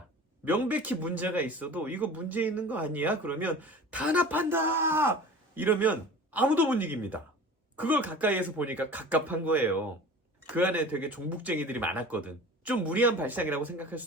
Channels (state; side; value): normal; both; correlation 0.39